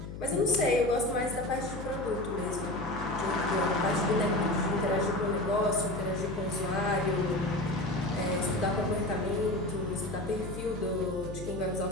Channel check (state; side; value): noise; left; hum, 9 dB below the sound